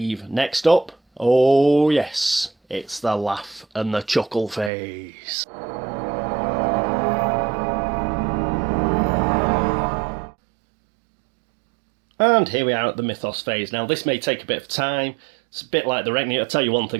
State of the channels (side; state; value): left; drops out; at 4.7 s